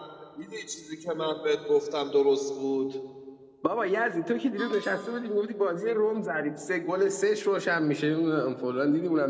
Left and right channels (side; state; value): both; identical; correlation 1.00